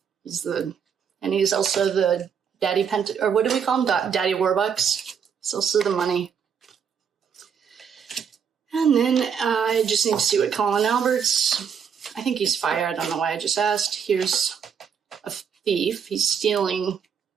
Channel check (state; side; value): quieter; left; 7.2 dB